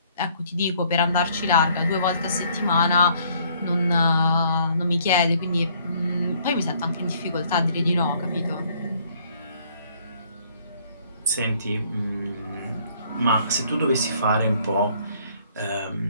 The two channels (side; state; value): both; inverted; correlation -0.62